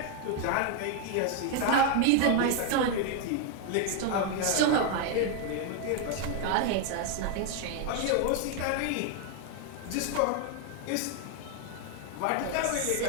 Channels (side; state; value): both; different; correlation 0.01